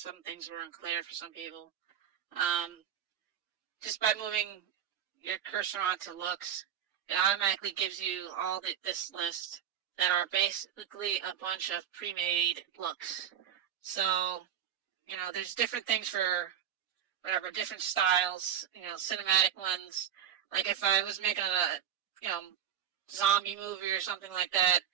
things were unclear for some people. Just by moving your cursor onto looks, it automatically gives you all this list that are basically a bunch of pre-made looks. So, there's different things for whatever, different styles, cinematic ones. Like if I was making a, zombie movie or something like that,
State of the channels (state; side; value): quieter; left; 9.5 dB